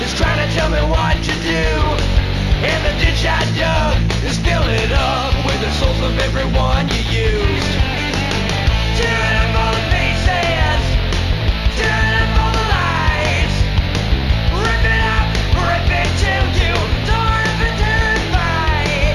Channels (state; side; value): identical; both; correlation 1.00